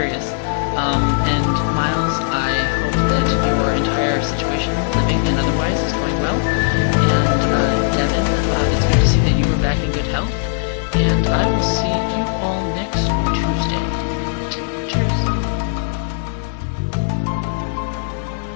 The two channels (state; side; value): silent; right; 57 dB below the other